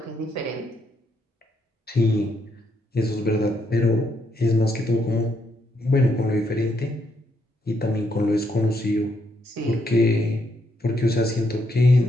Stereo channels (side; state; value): both; normal; correlation 0.76